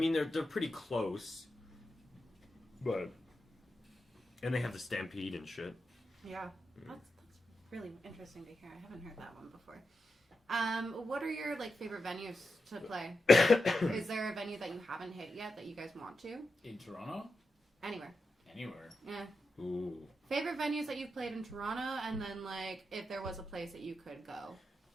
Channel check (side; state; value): both; normal; correlation 0.88